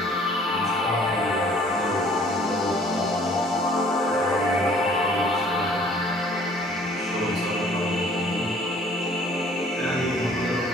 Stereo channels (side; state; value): both; normal; correlation 0.56